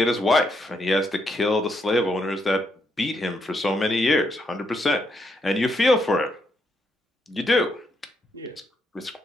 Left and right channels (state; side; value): normal; both; correlation 0.77